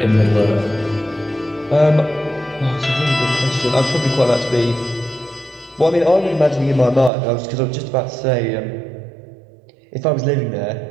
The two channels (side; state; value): left; drops out; at 7.1 s